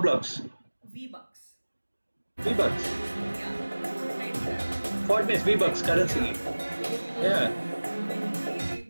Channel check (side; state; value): both; inverted; correlation -1.00